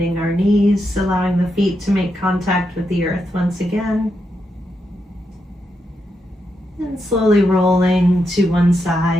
our knees, allowing the feet to make contact with the earth once again. And slowly rolling to one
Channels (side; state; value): both; normal; correlation 0.84